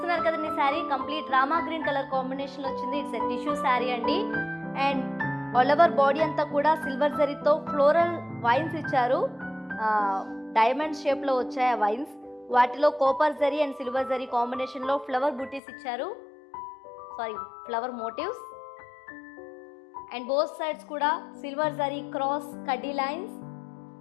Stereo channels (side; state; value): right; drops out; at 15.6 s